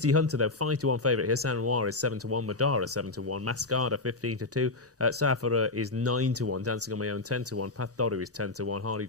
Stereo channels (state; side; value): quieter; right; 3.3 dB